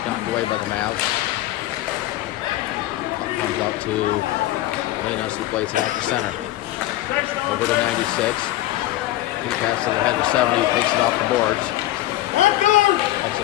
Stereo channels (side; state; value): right; quieter; 15.7 dB